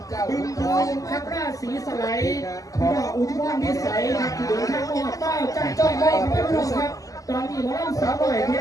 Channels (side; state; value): right; late; 0.17 ms